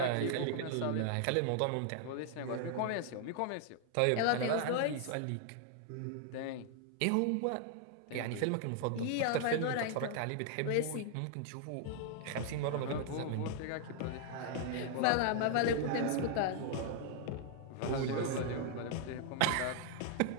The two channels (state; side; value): different; both; correlation 0.00